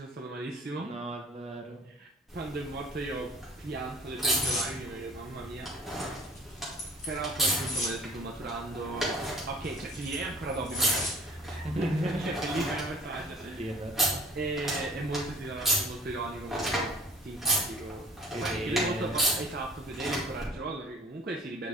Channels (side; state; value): both; normal; correlation 0.51